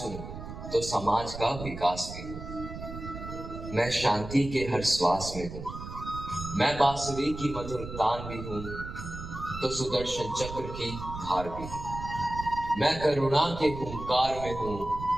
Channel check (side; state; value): right; noise; rumble, 10 dB below the sound